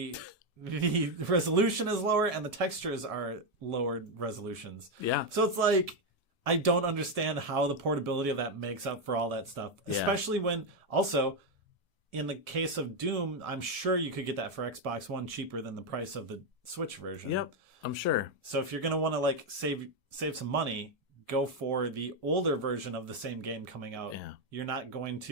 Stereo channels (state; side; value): late; left; 1.7 ms